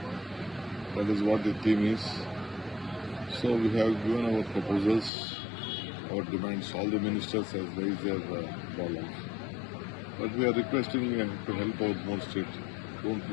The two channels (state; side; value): drops out; right; at 5.1 s